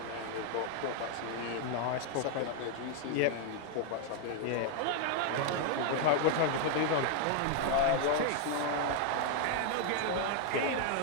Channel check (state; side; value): different; both; correlation 0.00